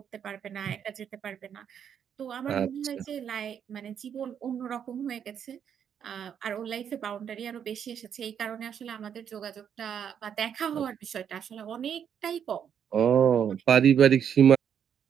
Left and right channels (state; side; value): quieter; left; 8.4 dB